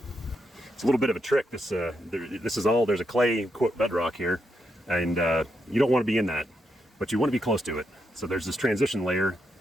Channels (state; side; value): normal; both; correlation 0.82